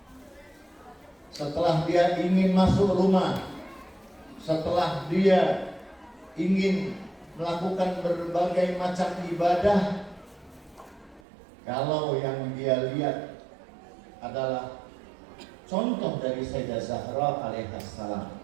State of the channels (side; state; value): left; drops out; at 11.2 s